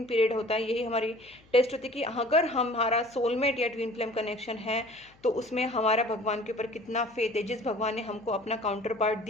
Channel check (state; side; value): noise; left; hum, 29 dB below the sound